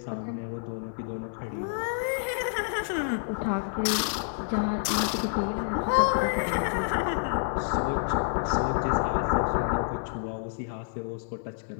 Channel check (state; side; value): silent; right; 59 dB below the other